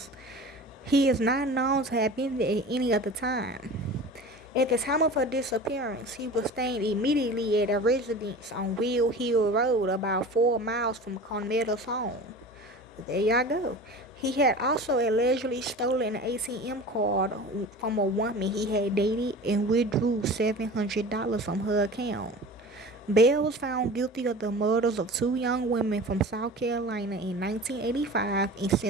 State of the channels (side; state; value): both; normal; correlation 0.37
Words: He is not known to have been there at any other time. At the time of her disappearance, he was staying immediately at a residence on Will Hill Road, about 4 miles from Carmela's home. There y'all go. He had also allegedly stolen an ATM card from a woman he had dated and withdrew $700 from her account. Bell was found guilty of the murders of 2 young women from South Carolina in 1985 and